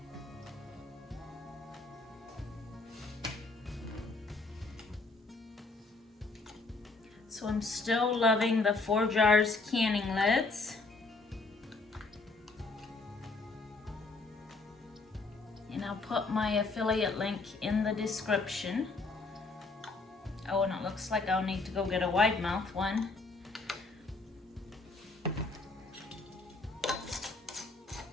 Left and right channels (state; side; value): quieter; right; 3.6 dB